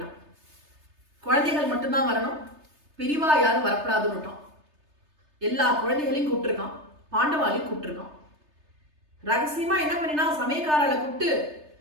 குழந்தைகள் மட்டும்தான் வரணும், பெரிவா யாரும் வரப்படாதுன்னுட்டான். எல்லா குழந்தைகளையும் கூப்பிட்டுருக்கான், பாண்டவாலையும் கூப்பிட்டுருக்கான். ரகசியமா என்ன பண்ணினா, சமயக்காரரை கூப்பிட்டு,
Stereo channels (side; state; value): left; late; 3.3 ms